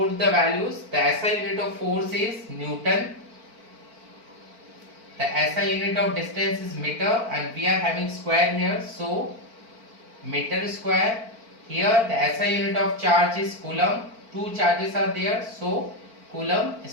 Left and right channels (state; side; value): late; left; 4.5 ms